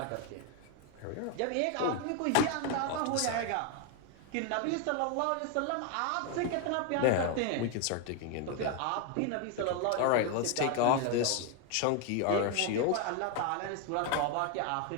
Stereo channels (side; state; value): both; different; correlation 0.01